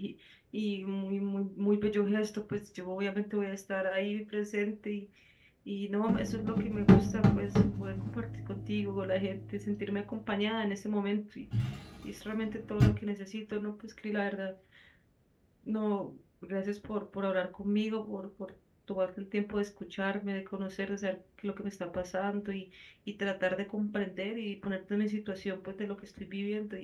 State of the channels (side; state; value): both; identical; correlation 1.00